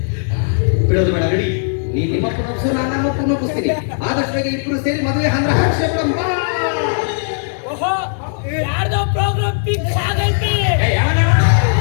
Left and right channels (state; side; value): silent; right; digital silence